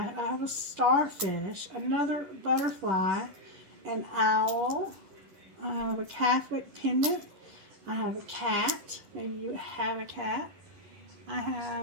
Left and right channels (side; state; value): left; late; 11 ms